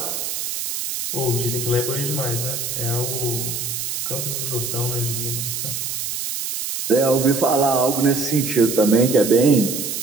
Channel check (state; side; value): noise; right; hiss, 4 dB below the sound